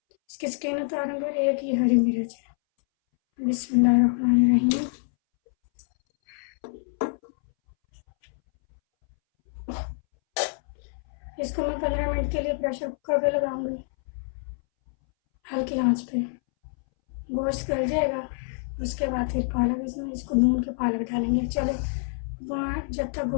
इसकी स्किन उतारूंगी। और 1 ये हरी मिर्च है। बिस्मिल्लाहिर्रहमानिर्रहीम। इसको मैं 15 मिनट के लिए प्रेशर कुकर पे लगाऊंगी, हल्की आंच पे। गोश्त गल जाएगा, उसके बाद फिर पालक इसको भून के पालक डालेंगे। चले, जब तक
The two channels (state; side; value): silent; right; 60 dB below the other